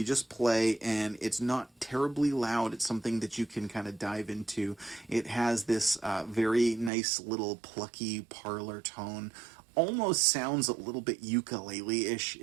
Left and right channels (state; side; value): drops out; left; at 6.9 s